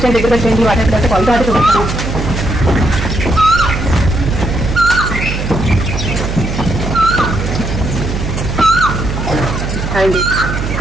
దగ్గర వచ్చేయండి. వాటర్ యాపిల్ అయితే కొలత అయితే చూపిస్తాం. అండి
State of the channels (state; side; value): noise; right; hum, 4 dB below the sound